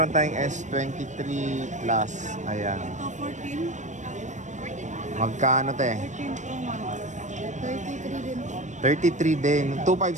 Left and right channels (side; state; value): left; late; 0.35 ms